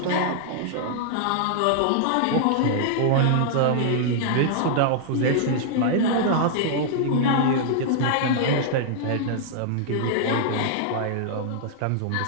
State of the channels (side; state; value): both; different; correlation -0.01